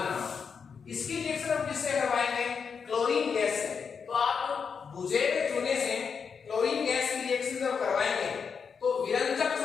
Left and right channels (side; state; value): right; quieter; 6.1 dB